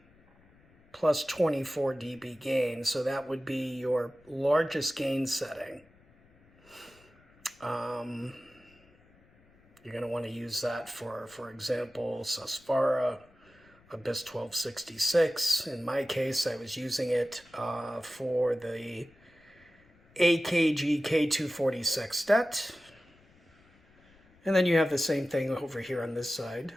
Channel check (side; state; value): left; noise; rumble, 29 dB below the sound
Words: plus 24 dB gain, so that would be your largest gain setting. You're going to want to use that for example, Susvara, Abyss 1266. In my case, I was using it for the AKG K240 sextet. And then you have the same thing over here on this side